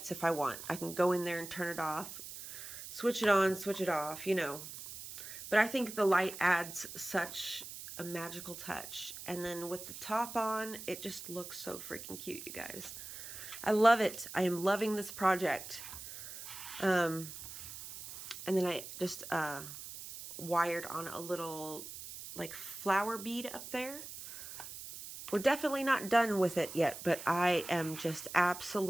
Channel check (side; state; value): right; noise; hiss, 11 dB below the sound